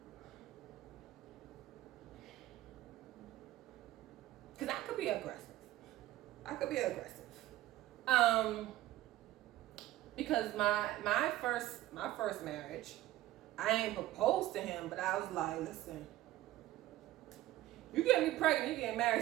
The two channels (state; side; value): quieter; left; 15.4 dB